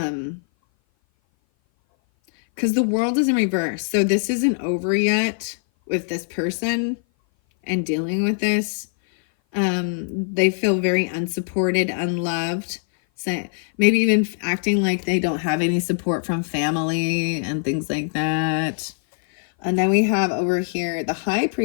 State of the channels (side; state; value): right; silent; 57 dB below the other